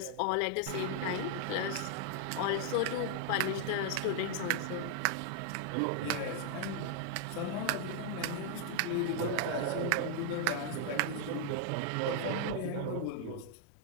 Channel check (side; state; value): both; different; correlation 0.00